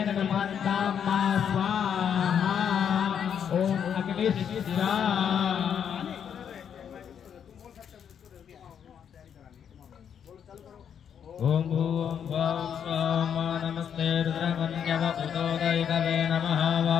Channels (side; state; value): right; quieter; 8.2 dB